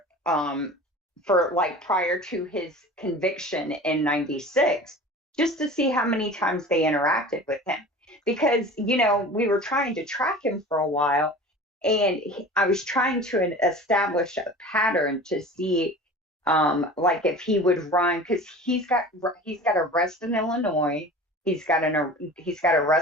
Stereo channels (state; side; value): normal; both; correlation 0.38